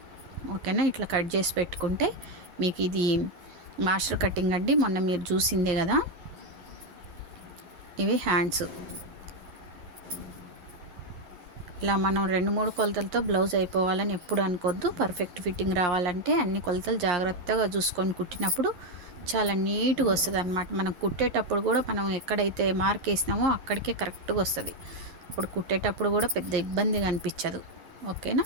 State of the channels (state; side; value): late; left; 12 ms